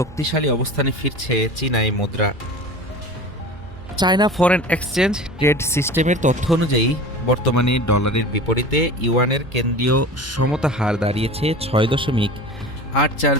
অবস্থানে ফিরছে চীনা এই মুদ্রা। চায়না ফরেন এক্সচেঞ্জ ট্রেড সিস্টেমের তথ্য অনুযায়ী বর্তমানে ডলারের বিপরীতে ইউয়ানের কেন্দ্রীয় সমতা হার দাঁড়িয়েছে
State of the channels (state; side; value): normal; both; correlation 0.36